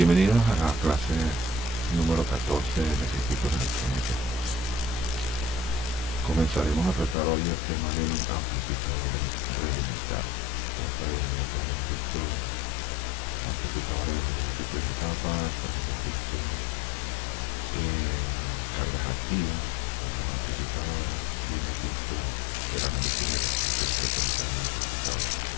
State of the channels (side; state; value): right; drops out; at 7.2 s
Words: a la clase número 14 de circuitos electrónicos. Comenzaremos a tratar hoy el tema de amplificadores realimentados. Ya previamente hemos visto amplificadores de múltiples etapas, hemos visto cargas activas para los amplificadores y hemos visto el análisis de respuesta en frecuencia de un amplificador.